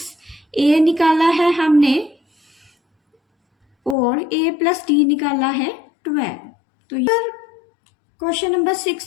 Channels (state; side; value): drops out; right; at 4.0 s